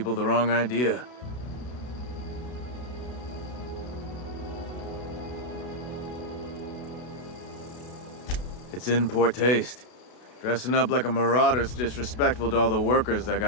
the wrong idea. It's in poor taste. Dressing up like a marauder's disrespectful to all the workers that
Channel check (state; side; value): late; right; 32 ms